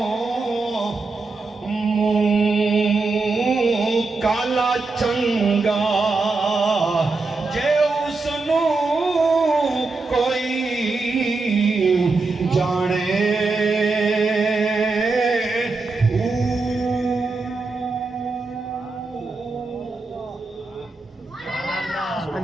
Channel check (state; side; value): quieter; left; 3.7 dB